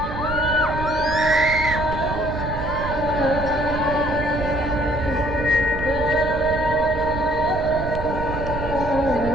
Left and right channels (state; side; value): noise; right; rumble, 7 dB below the sound